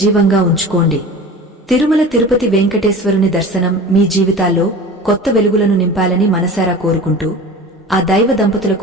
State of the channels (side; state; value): both; normal; correlation 0.36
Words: ఉంచుకోండి. తిరుమల తిరుపతి వెంకటేశ్వరుని దర్శనం మీ జీవితాల్లో కొత్త వెలుగులను నింపాలని మనసారా కోరుకుంటూ, ఆ దైవ